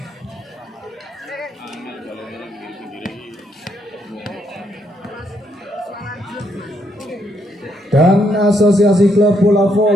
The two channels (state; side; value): normal; both; correlation 0.75